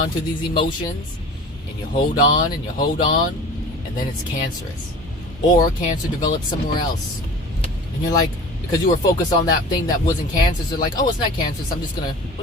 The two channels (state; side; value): normal; both; correlation 0.40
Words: to these emotions, and you hold on, and you hold on, and then it's cancerous. Or cancer develops somewhere else. And you're like, because you were focused on that thing that wasn't cancerous, you're like, oh, it's not cancerous, I'm just gonna